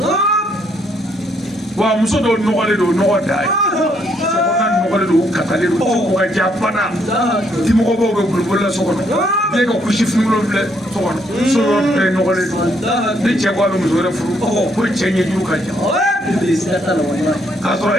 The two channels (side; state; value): both; normal; correlation 0.71